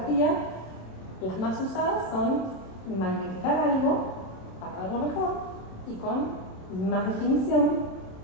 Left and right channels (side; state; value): right; late; 27 ms